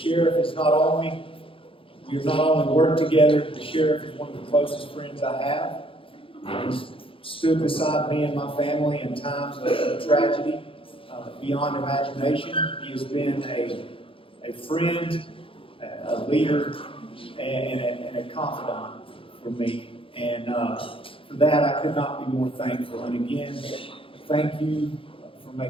is we have not only worked together, the sheriff is one of the closest friends I have. He's stood beside me and my family in times of tragedy beyond imagination. He has been a friend, a leader, and a confidant for me. And for that, I could not be more thankful. And again, thank you for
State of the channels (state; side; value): late; right; 0.26 ms